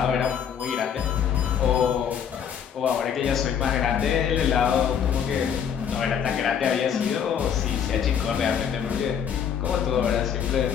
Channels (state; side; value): quieter; right; 8.1 dB